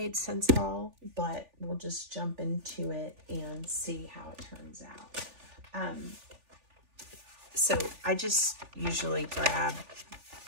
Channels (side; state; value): left; late; 3.4 ms